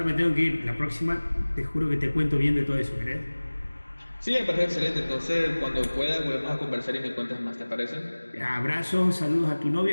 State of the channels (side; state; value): both; inverted; correlation -1.00